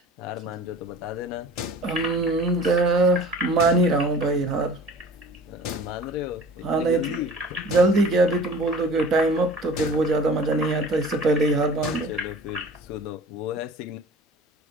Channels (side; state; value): both; normal; correlation 0.44